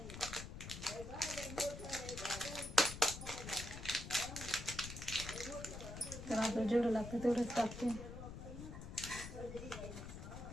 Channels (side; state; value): left; noise; rumble, 9 dB below the sound